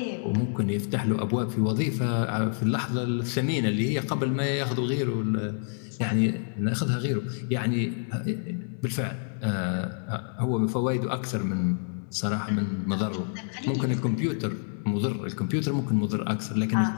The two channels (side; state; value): right; silent; digital silence